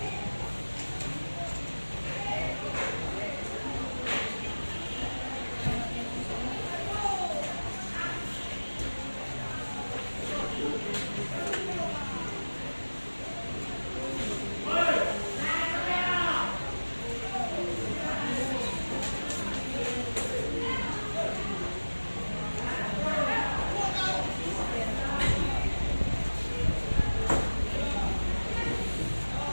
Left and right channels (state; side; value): inverted; both; correlation -1.00